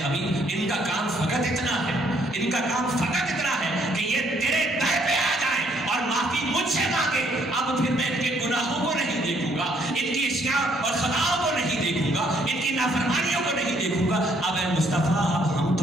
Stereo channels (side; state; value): both; normal; correlation 0.67